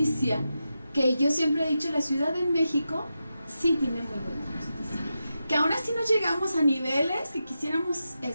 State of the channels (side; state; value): both; inverted; correlation -0.89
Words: que yo siempre he dicho, la Ciudad de México sí tiene muy buena justicia. Que aún así no llegamos a niveles que quisiéramos,